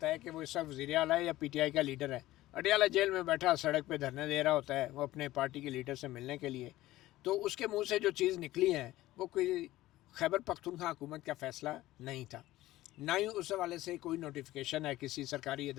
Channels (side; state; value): right; quieter; 16.3 dB